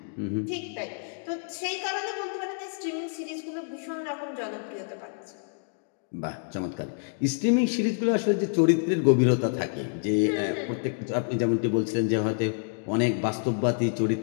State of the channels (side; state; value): right; silent; digital silence